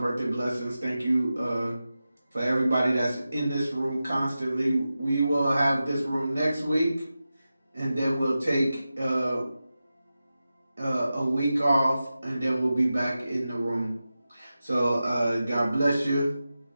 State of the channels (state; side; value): inverted; both; correlation -0.93